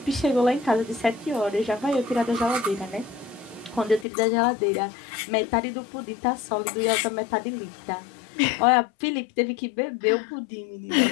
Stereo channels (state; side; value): drops out; right; at 4.0 s